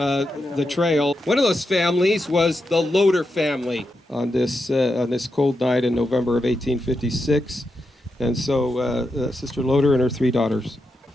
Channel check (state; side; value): normal; both; correlation 0.86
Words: trail. One of those families was the Loader family on this cold night in November of 1856. And so Sister Loader and her 3 daughters.